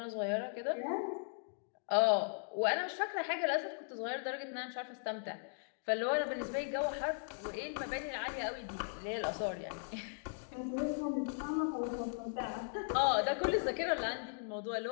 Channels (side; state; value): right; silent; digital silence